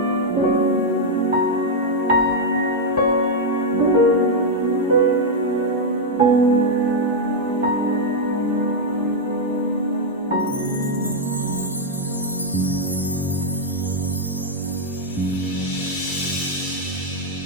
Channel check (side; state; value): both; normal; correlation -0.01